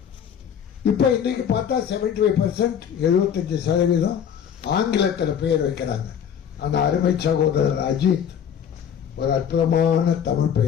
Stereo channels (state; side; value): quieter; right; 8.4 dB